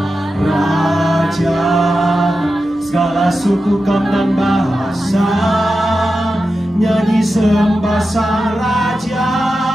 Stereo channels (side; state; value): both; normal; correlation 0.91